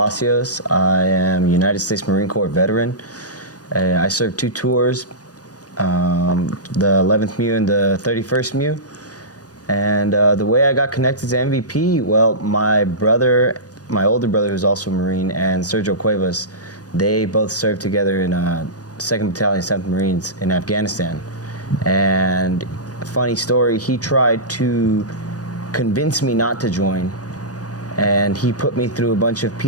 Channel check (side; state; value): right; late; 0.68 ms